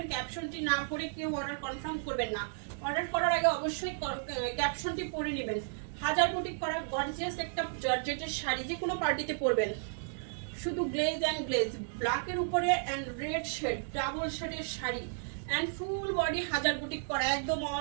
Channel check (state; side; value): silent; left; digital silence